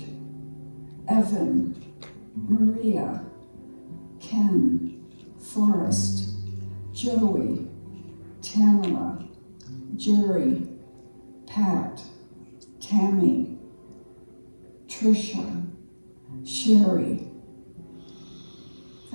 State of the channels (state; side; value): inverted; both; correlation -1.00